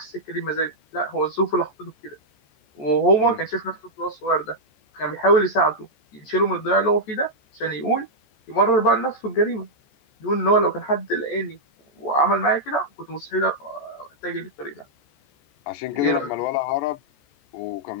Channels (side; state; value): right; late; 14 ms